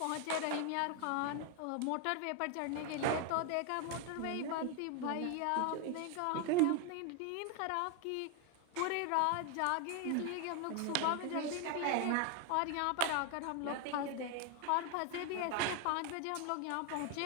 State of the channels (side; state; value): both; different; correlation 0.01